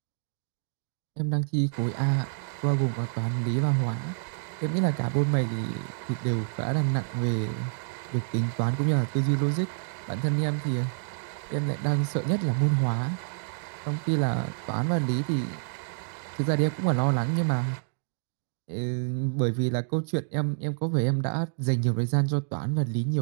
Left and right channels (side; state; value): left; silent; digital silence